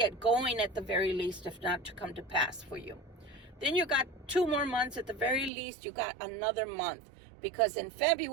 going at the very least, if not to come to pass for you. Then you got 2 more months at the very least. You got another month. Because in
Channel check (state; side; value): drops out; left; at 5.5 s